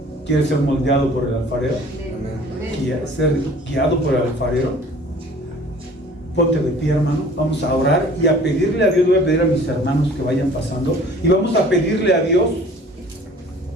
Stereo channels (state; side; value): normal; both; correlation 0.49